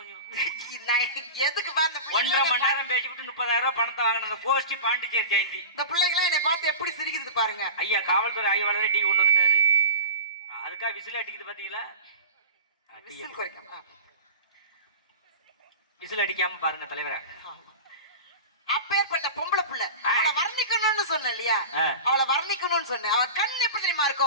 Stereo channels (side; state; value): both; inverted; correlation -0.31